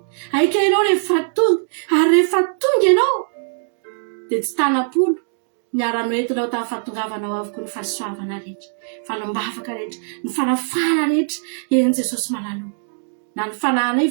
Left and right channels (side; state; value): left; silent; digital silence